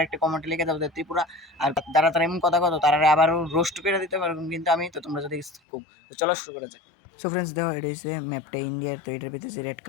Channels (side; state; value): right; drops out; at 5.6 s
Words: একটা কমেন্টে লিখে দাও যে ত্রিপুরা, আর যারা তারা এমন কথা তারা আবারও রোস্ট করে দিতে পারবেন কিন্তু আমি, তো তোমরা যদি খুব, তো চলো শুরু করা যায়। সো ফ্রেন্ডস দেখো, এটা হচ্ছে ম্যাপটা ইন্ডিয়ার। তো এটার ভিতরে যে রেড